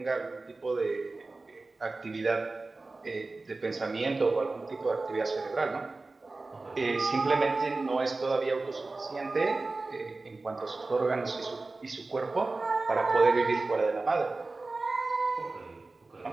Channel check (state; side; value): quieter; left; 3.4 dB